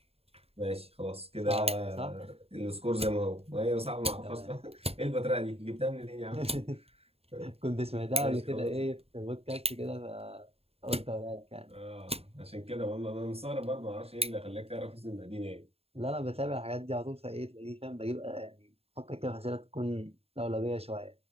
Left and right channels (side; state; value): left; late; 0.29 ms